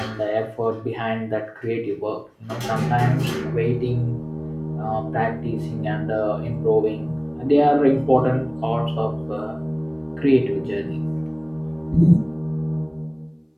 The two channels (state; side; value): identical; both; correlation 1.00